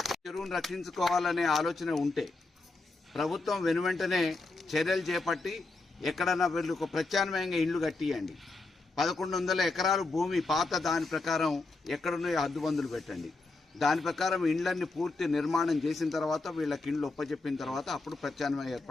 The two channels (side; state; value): right; quieter; 3.4 dB